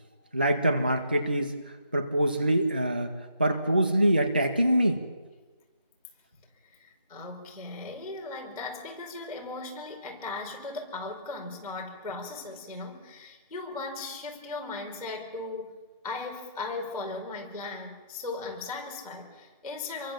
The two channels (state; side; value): inverted; both; correlation -0.71